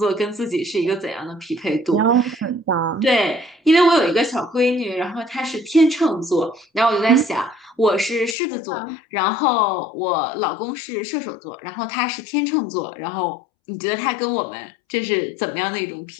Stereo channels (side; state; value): right; drops out; at 8.3 s